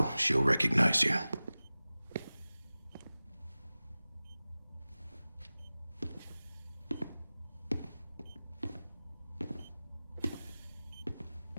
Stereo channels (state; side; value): inverted; both; correlation -0.97